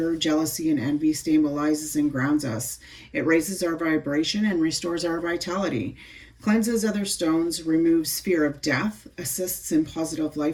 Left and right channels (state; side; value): identical; both; correlation 1.00